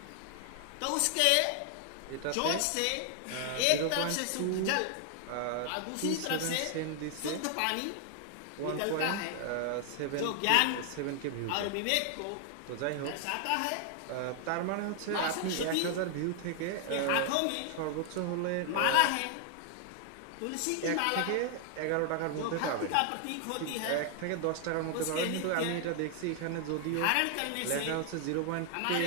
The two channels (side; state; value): both; different; correlation 0.00